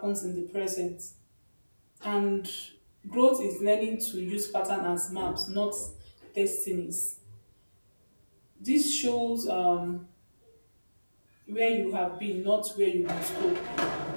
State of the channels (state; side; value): inverted; both; correlation -1.00